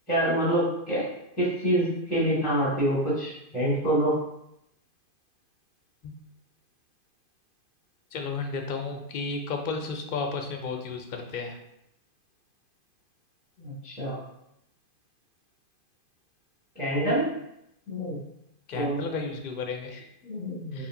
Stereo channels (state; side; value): late; right; 2.5 ms